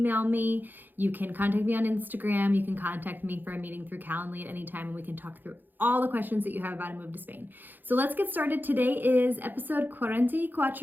me, you can contact me on Instagram, you can contact me for a meeting through Calendly at any time, and we can talk through all the questions that you have about a move to Spain. So let's get started. Today is episode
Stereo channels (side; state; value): left; late; 0.089 ms